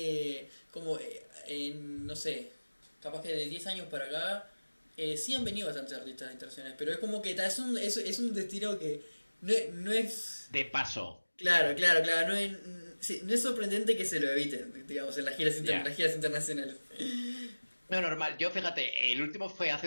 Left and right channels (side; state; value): both; inverted; correlation -1.00